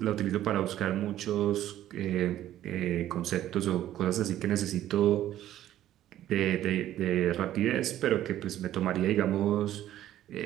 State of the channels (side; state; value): left; quieter; 12.7 dB